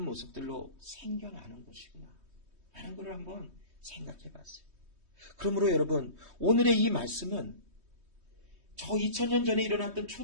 모습들로 생겨나는 것이구나 라는 것을 한번 생각해 봤어요. 그러므로 여러분, 오늘의 이 말씀은 저 2000년 전에 일어났던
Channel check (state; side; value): late; left; 3.2 ms